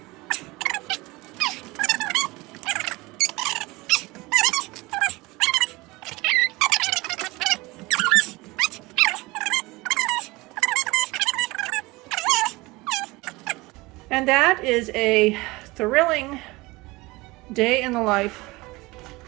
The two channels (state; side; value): quieter; left; 22.2 dB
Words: And that is a thrilling day in the life